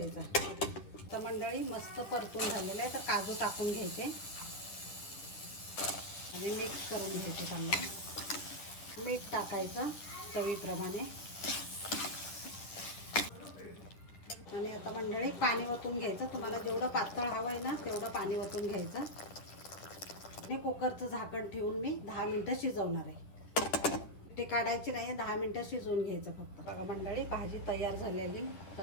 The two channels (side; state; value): right; late; 9.8 ms